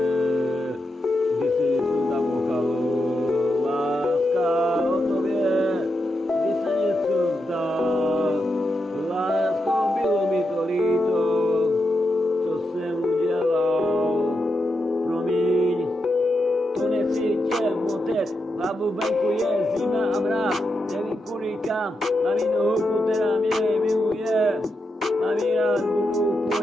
kdy si něco zamochalo, láska o tobě, kdy se něco zdá, lásko, bylo mi to líto, co jsem udělal, promiň, to nechci tě motet, hlavu venku je zima a mráz, nevím kudy kam, mám jinou holku, která mě miluje, mám ji rád, budu po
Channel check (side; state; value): both; normal; correlation 0.86